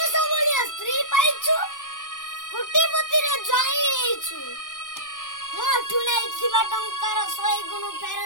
बोलिया स्त्री पाइछु कोटिपति रे जाई हेछु मोटू नहीं थिबा टंकर 100 गुण फेर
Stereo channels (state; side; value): late; right; 0.87 ms